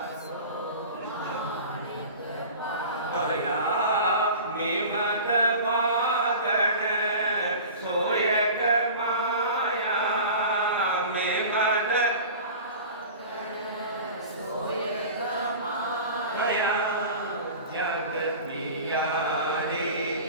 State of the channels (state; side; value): inverted; both; correlation -0.37